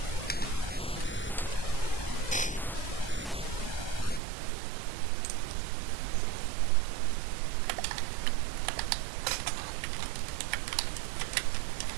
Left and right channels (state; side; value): drops out; left; at 4.2 s